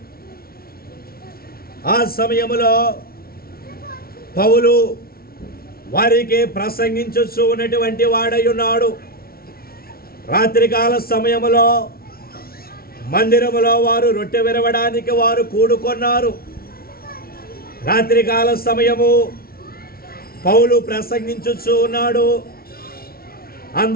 ఆ సమయములో పౌలు వారికి ప్రసంగించుచూ ఉన్నటువంటి వాడై ఉన్నాడు. రాత్రికాల సమయములో మందిరములో వారు రొట్టె విరవడానికి వారు కూడుకున్నారు. రాత్రికాల సమయము పౌలు ప్రసంగించుచూ ఉన్నాడు.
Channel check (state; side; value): late; right; 0.44 ms